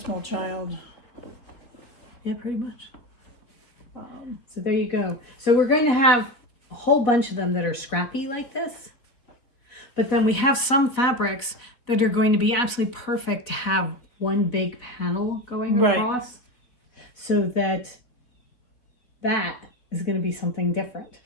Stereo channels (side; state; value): right; late; 4.0 ms